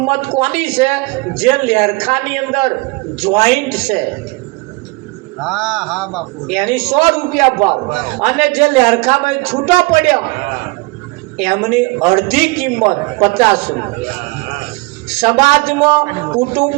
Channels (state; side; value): quieter; left; 25.6 dB